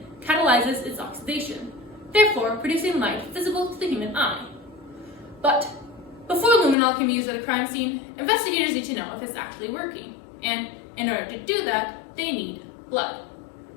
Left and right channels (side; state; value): right; drops out; at 6.8 s